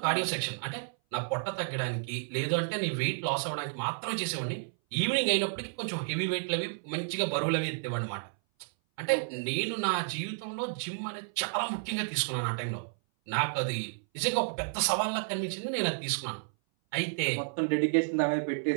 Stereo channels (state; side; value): silent; left; 57 dB below the other